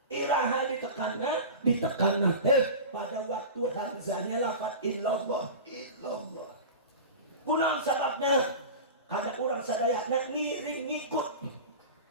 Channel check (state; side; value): inverted; both; correlation -0.30